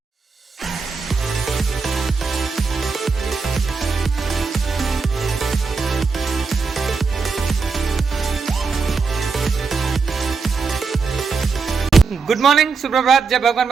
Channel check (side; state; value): left; quieter; 4.8 dB